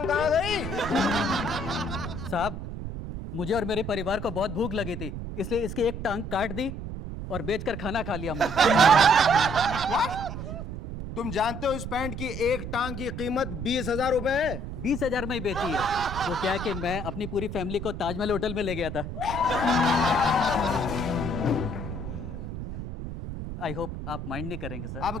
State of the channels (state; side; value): noise; right; rumble, 7 dB below the sound